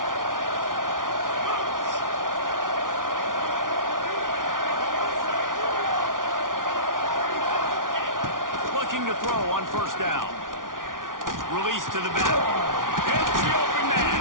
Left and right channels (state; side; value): late; left; 0.89 ms